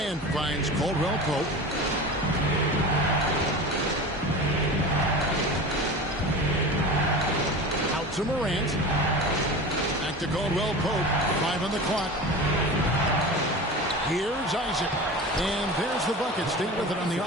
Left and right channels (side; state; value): both; normal; correlation 0.32